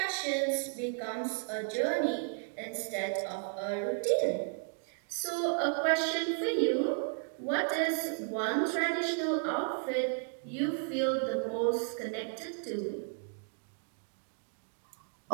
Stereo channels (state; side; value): silent; left; 55 dB below the other